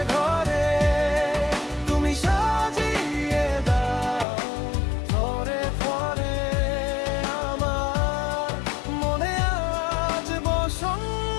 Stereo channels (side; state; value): right; drops out; at 4.2 s